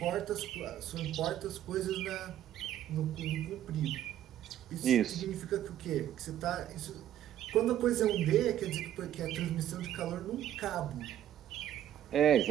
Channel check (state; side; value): quieter; left; 11.6 dB